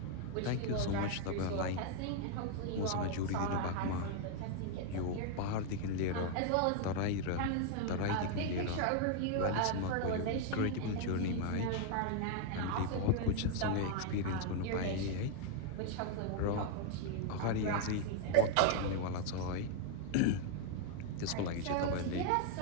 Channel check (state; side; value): different; both; correlation 0.00